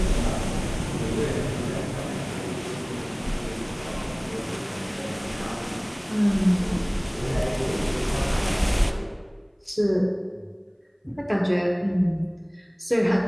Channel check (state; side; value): identical; both; correlation 1.00